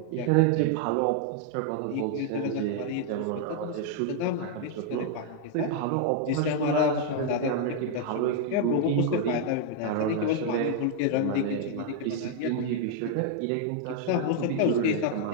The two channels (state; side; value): different; both; correlation 0.00